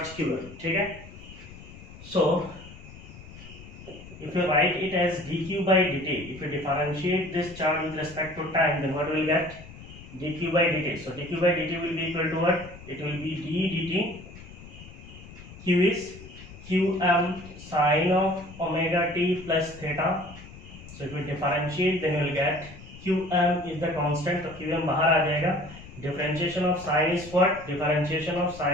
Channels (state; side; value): noise; left; rumble, 17 dB below the sound